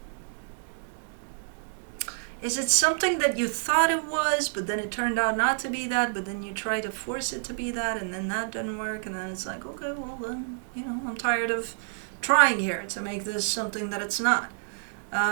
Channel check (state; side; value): silent; left; digital silence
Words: Is it something that you thought it was, but then it turned out not to be that, but then you try to force it to be that, and then that didn't work, and then it's like, okay, well then, you know, I'm tired of trying here to make this something that it's not.